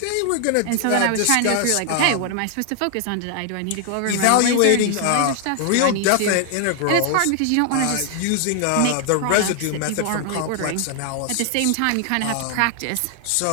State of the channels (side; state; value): both; different; correlation 0.00